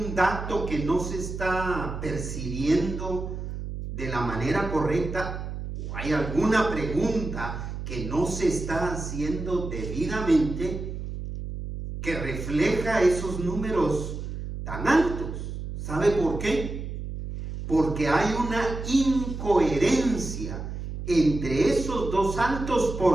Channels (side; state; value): right; noise; hum, 7 dB below the sound